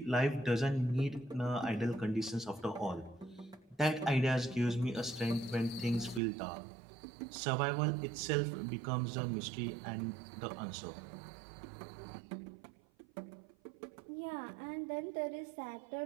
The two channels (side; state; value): left; drops out; at 6.2 s